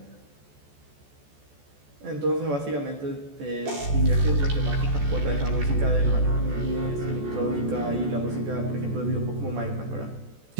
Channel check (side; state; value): left; late; 14 ms